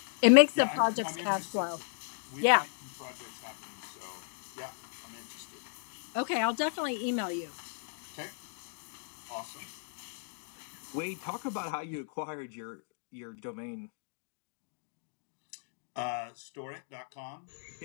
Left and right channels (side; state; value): right; silent; digital silence